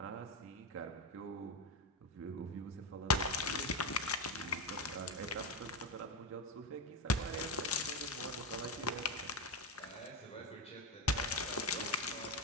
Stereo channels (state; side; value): normal; both; correlation 0.11